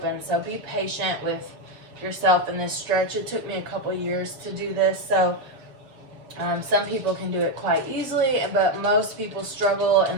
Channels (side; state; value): left; late; 6.8 ms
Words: So be patient with yourself in this stretch. It took me a couple years to do this, so some people can do it quite easily, but most people struggle